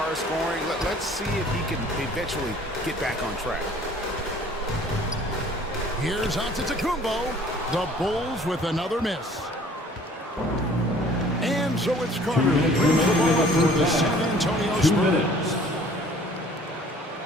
as scoring. Let's see if he can eventually get back on track. Here's Antetokounmpo. The Bulls with another miss. And so it's Carter who brings the ball for the San Antonio Spurs.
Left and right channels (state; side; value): normal; both; correlation 0.53